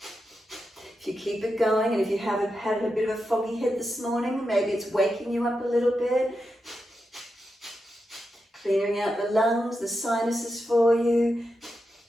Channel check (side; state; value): both; normal; correlation 0.88